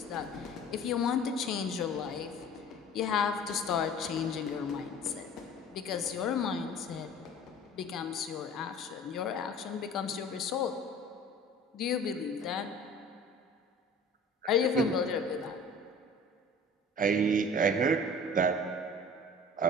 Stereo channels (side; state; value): both; normal; correlation 0.44